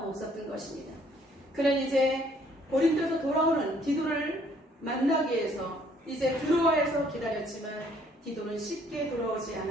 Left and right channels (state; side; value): normal; both; correlation 0.63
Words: 없었던 것입니다. 그는 이제 고린도에서 돌아오는 디도를 마나기 위해서 이제 드로아에서 기다렸지만 디도는 쉽게 돌아오지